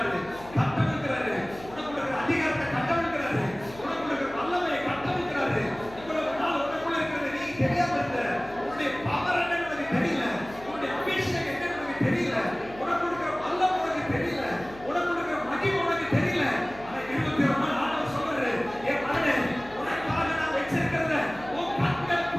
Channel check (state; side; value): noise; left; hum, 18 dB below the sound